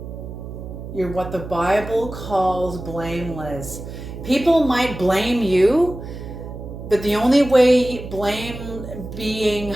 You're what the Bible calls blameless. People might blame you, but the only way blame being,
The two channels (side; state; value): right; noise; hum, 10 dB below the sound